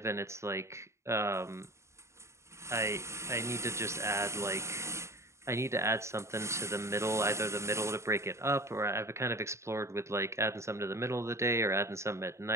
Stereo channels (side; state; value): left; late; 0.14 ms